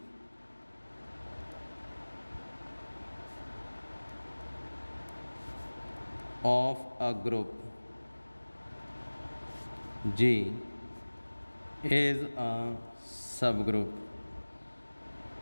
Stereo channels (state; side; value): inverted; both; correlation -1.00